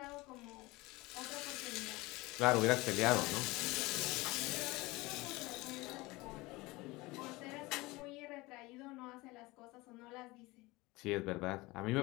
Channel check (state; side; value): quieter; right; 21.9 dB